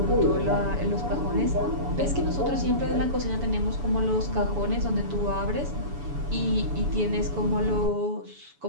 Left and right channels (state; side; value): late; left; 7.0 ms